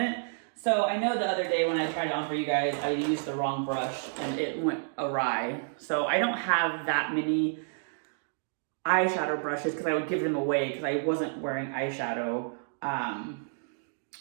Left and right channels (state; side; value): silent; left; digital silence